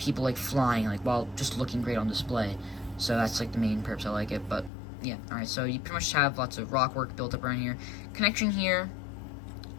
flying while just looking great on display. So that's the main purpose I like it. But yeah, alright, so you pretty much have lots of rock work built up around here. Connection here,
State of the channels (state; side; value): drops out; right; at 4.7 s